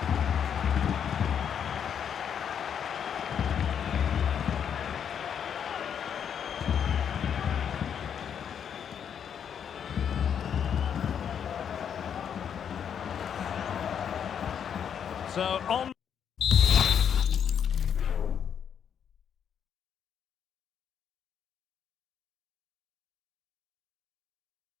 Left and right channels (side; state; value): right; quieter; 8.1 dB